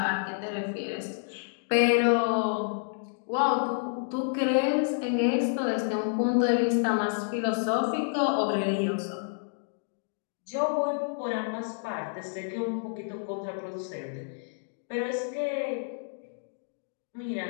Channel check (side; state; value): right; silent; digital silence